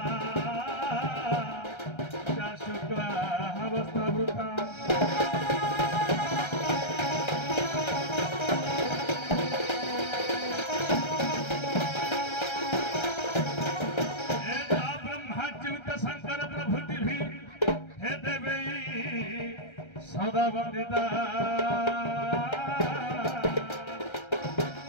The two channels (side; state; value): right; late; 1.3 ms